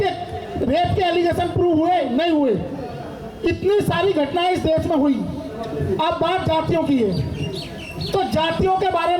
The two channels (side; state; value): both; identical; correlation 1.00